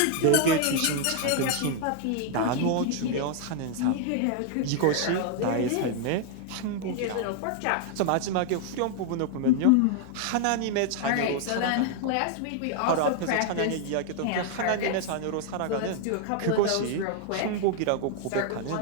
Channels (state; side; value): different; both; correlation 0.00